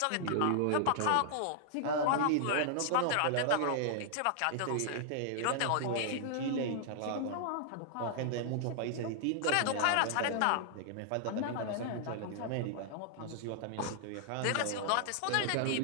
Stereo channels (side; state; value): both; different; correlation -0.01